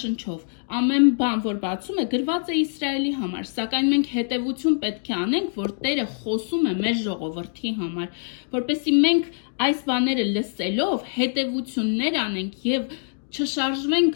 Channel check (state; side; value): silent; right; digital silence